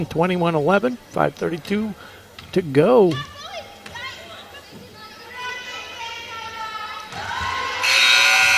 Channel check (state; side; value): identical; both; correlation 1.00